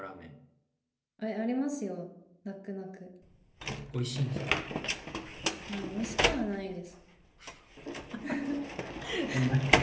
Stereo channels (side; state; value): both; identical; correlation 1.00